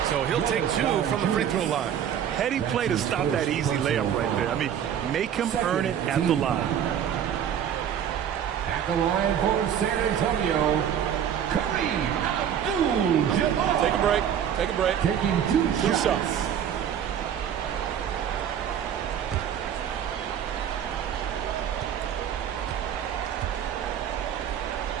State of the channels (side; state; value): left; quieter; 9.1 dB